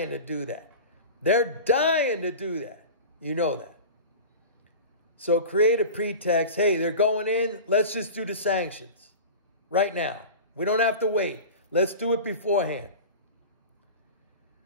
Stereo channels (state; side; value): inverted; both; correlation -0.33